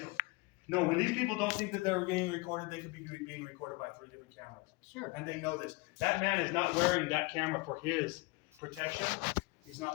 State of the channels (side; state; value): right; quieter; 26.0 dB